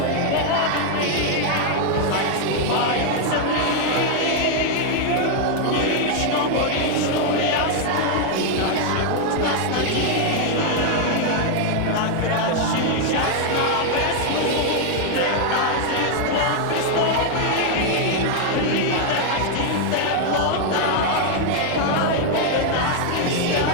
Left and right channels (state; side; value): different; both; correlation 0.00